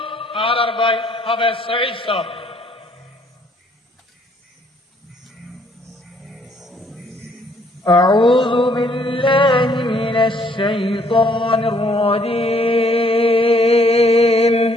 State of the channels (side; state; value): both; normal; correlation 0.65